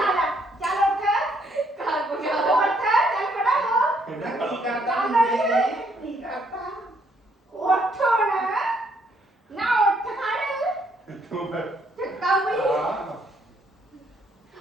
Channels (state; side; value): normal; both; correlation 0.70